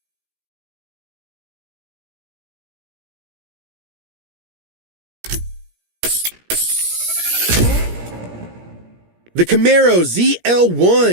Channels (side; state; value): left; late; 17 ms